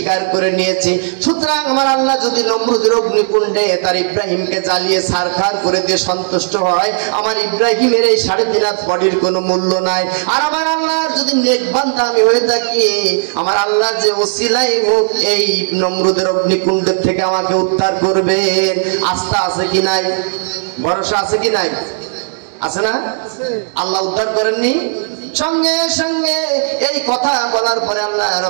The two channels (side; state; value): left; silent; digital silence